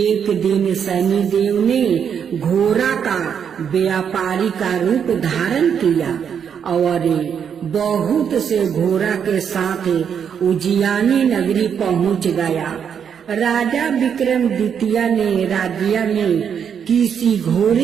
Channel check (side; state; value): left; quieter; 7.7 dB